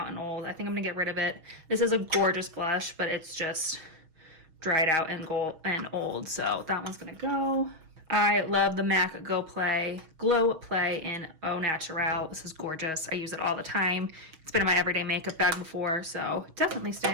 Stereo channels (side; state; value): left; late; 6.2 ms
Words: and old. I think I'm gonna get rid of it. This is a gorgeous blush, but it's just dried out and old, so that one's gonna go. I love the MAC Glow Play in Au Naturel. This is gorgeous. I use it all the time. It's been in my everyday makeup bag before, so definitely